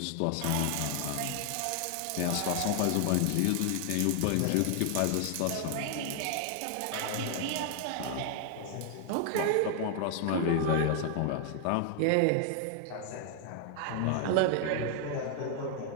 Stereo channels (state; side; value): different; both; correlation 0.00